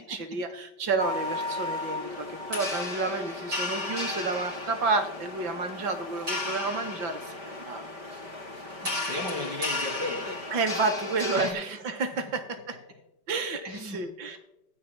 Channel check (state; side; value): late; left; 5.1 ms